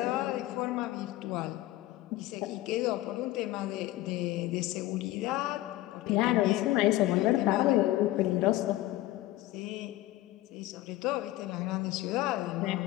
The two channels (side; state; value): right; quieter; 16.5 dB